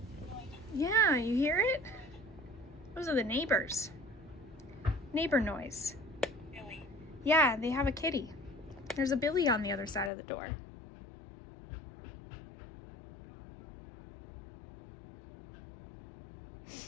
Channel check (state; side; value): drops out; right; at 10.1 s